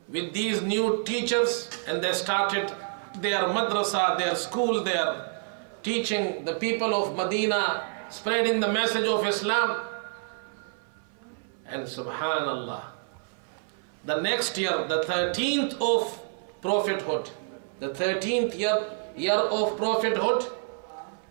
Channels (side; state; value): left; silent; 59 dB below the other